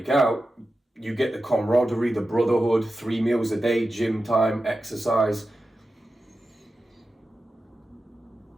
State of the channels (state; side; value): normal; both; correlation 0.92